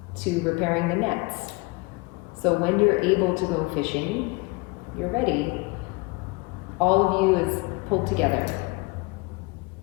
to repairing the nets. So when you're able to go fishing, you're ready. All of you is pulled together.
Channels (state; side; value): quieter; right; 26.1 dB